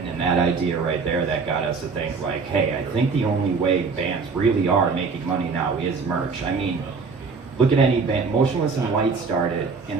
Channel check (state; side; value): quieter; left; 4.8 dB